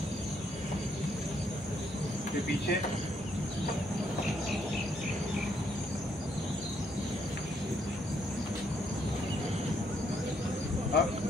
फिर पीछे, अब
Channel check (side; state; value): both; normal; correlation 0.73